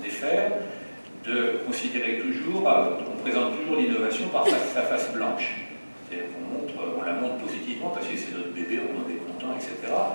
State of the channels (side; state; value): both; inverted; correlation -1.00